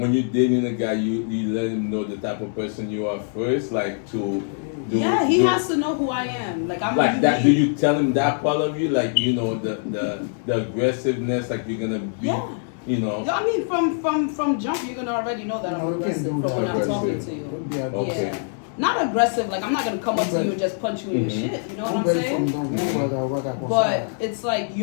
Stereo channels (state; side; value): silent; right; 63 dB below the other